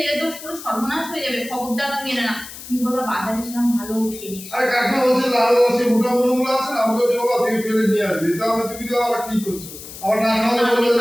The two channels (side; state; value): left; noise; hiss, 13 dB below the sound